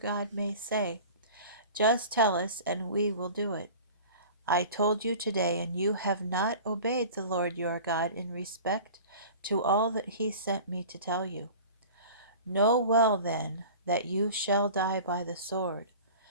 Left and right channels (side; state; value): both; inverted; correlation -0.40